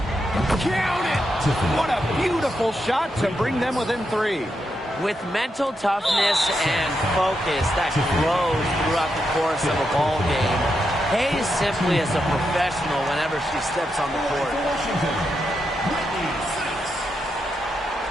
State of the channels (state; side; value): normal; both; correlation 0.84